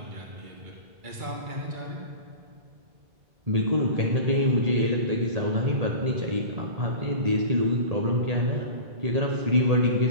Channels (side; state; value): left; late; 1.8 ms